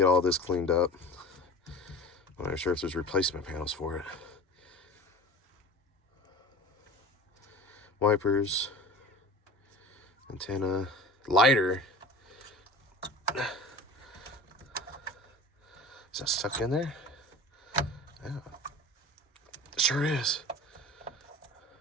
all this cleaned up. I'm not sure if there's replacement panels for it. Wipers. Antenna. Lighter. Is that stuck in there? Yeah. It sure is.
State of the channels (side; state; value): both; normal; correlation 0.37